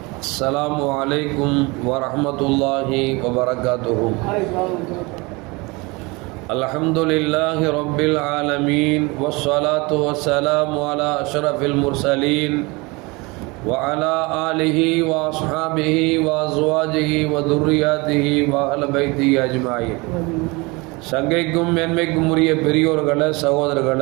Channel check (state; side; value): quieter; left; 25.7 dB